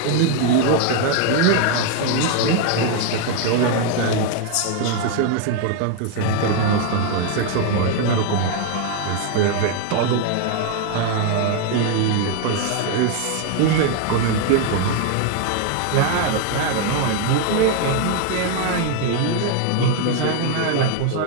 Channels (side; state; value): both; different; correlation 0.01